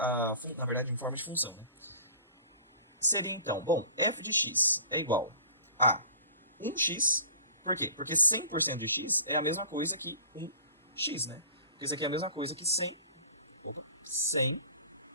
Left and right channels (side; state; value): both; inverted; correlation -0.44